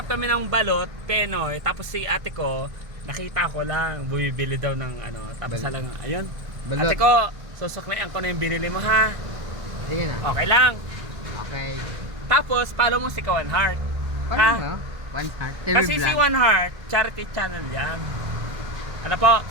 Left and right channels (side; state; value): left; late; 1.6 ms